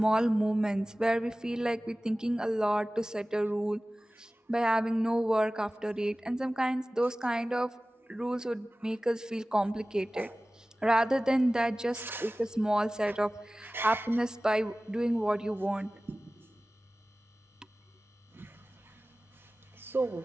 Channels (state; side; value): normal; both; correlation 0.97